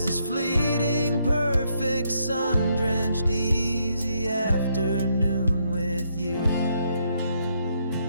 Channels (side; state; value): both; inverted; correlation -0.75